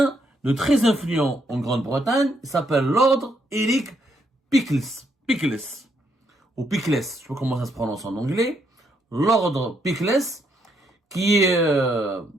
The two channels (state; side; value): normal; both; correlation 0.75